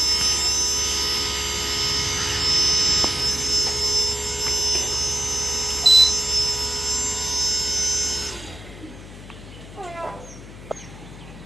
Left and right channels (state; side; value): noise; left; hum, 16 dB below the sound